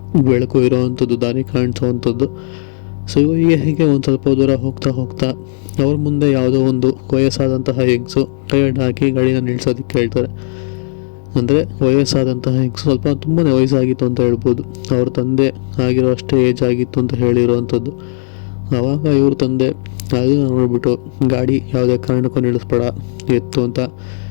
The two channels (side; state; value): right; silent; digital silence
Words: ಬೆಳಕು ಇರೋವಂಥದ್ದು, ದಾರಿ ಕಾಣಿಸೋವಂಥದ್ದು. ಸೊ ಹೀಗೆ ಒಂದು ಸ್ವಲ್ಪ ದೂರ ಹೋಗ್ತಾ ಹೋಗ್ತಾ ಅವ್ರ ಮುಂದೆ ಯಾವುದೋ ಒಂದು ವಯಸ್ಸಾದಂತಹ ಹೆಂಗಸು ಕೈ ಅಡ್ಡ ಹಾಕಿ ಗಾಡಿನ ನಿಲ್ಸೋದಕ್ಕೆ ಹೇಳ್ತಾರೆ. ಅಂದರೆ ವಯಸ್ಸಾದಂತಹ ಹೆಂಗಸು, ಸ್ವಲ್ಪ ತುಂಬಾ ವಯಸ್ಸಾಗಿತ್ತು ಅಂತ ಹೇಳ್ಬೋದು. ಅವ್ರ ತಂದೆ ಆಗಿರೋ ಅಷ್ಟೇ ಏಜ್ ಆಗಿತ್ತು ಅಂತ ಹೇಳಿರುವಂಥದ್ದು. ಆವಾಗ ಇವ್ರ ತಂದೆ ಅದನ್ನು ನೋಡಿಬಿಟ್ಟು ಗಾಡಿ ಯಾವುದೇ ಕಾರಣಕ್ಕೂ ನಿಲ್ಲಿಸ್ಬೇಡ ಎತ್ತು ಅಂತ